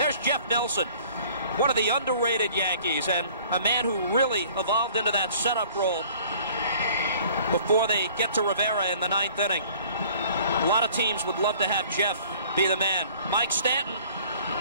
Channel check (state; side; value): inverted; both; correlation -0.52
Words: Jeff Nelson, one of the underrated Yankees, and a man who really evolved into that setup role before they get to Rivera in the 9th inning. A lot of teams would love to have Jeff be the man. Mike Stanton,